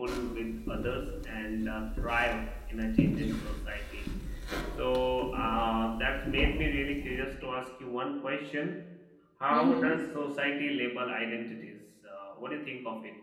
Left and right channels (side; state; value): both; identical; correlation 1.00